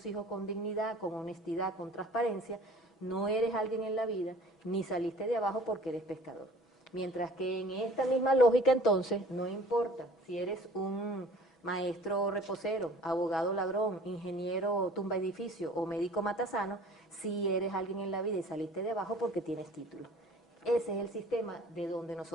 hijos con dignidad, con honestidad, con transparencia, no eres alguien en la vida, ni saliste de abajo porque eres pescador. Mientras que en esta misma lógica, entonces, no importa si eres un maestro reposero, abogado ladrón, ingeniero tumba edificio o médico matasano, si eres alguien en la vida y saliste de abajo porque tienes título. Ese es el sistema de donde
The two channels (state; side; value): normal; both; correlation 0.48